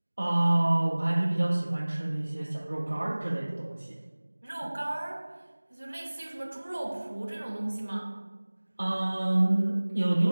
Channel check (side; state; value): both; inverted; correlation -1.00